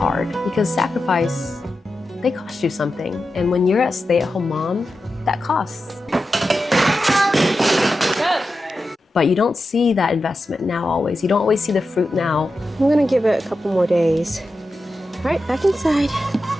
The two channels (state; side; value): normal; both; correlation 0.91